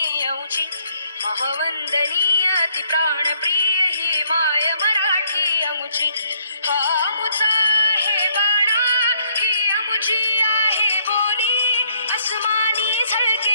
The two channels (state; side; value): inverted; both; correlation -0.67